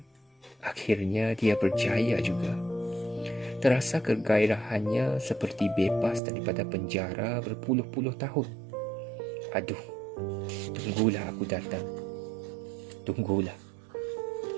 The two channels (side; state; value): left; drops out; at 6.2 s